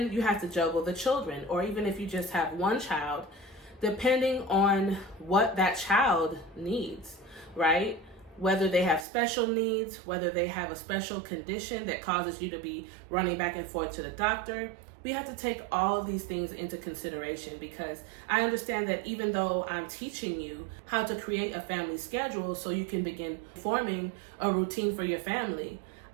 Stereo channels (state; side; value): drops out; left; at 9.1 s